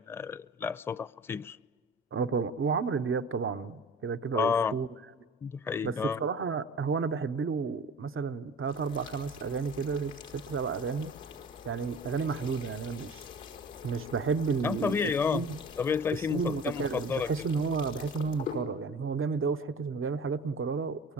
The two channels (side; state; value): both; normal; correlation 0.41